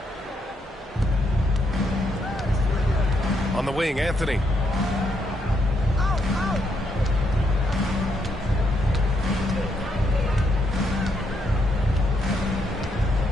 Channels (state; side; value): normal; both; correlation 0.76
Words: On the wing, Anthony.